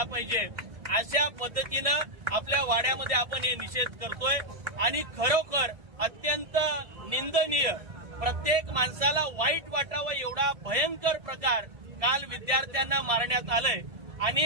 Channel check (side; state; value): left; late; 1.7 ms